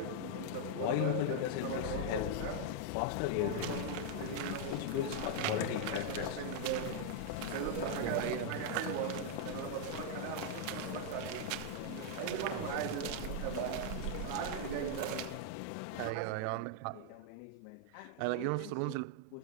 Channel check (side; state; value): both; different; correlation -0.01